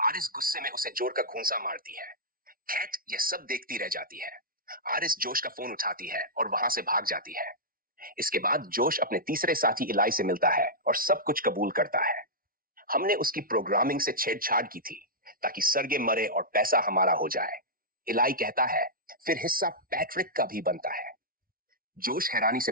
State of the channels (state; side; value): late; left; 0.42 ms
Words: आरिस गुस्से में उसे जोर का घूंसा मारती है। कैट यह सब देखती रह जाती है। आरिस जोश का फोन उठाती है और वहां से भाग जाती है। इसके बाद जोश अपने तीसरे साथी इलाई से मिलता है और सब कुछ कबूल करता है। हमने उसकी प्रोग्रामिंग से छेड़छाड़ की थी, ताकि सरगे मरे और पैसा हमारा हो जाए। इलाई कहता है, फिर हिस्सा पैट्रिक का भी बनता है। जोश हैरानी से